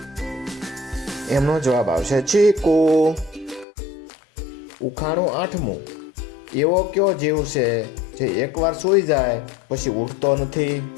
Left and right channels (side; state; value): right; drops out; at 3.7 s